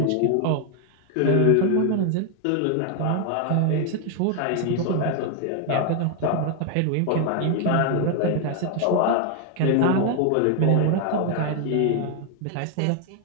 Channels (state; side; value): different; both; correlation 0.00